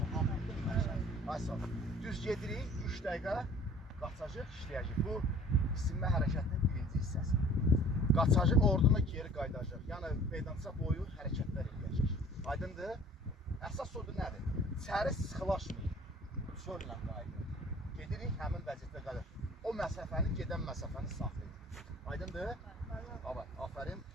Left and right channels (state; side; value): normal; both; correlation 0.50